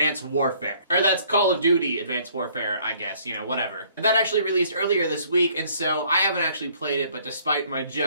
Warfare. Or that's Call of Duty Advanced Warfare, I guess, you know, whatever. That actually released earlier this week, and so I haven't actually played it, but despite my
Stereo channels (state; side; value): inverted; both; correlation -0.60